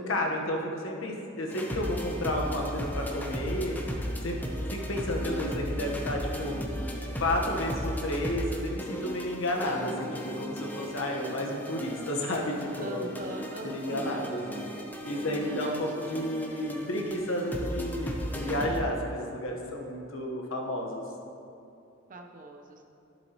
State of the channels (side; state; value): both; normal; correlation 0.32